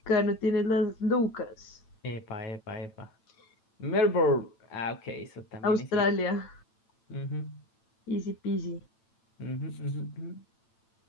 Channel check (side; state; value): right; late; 8.9 ms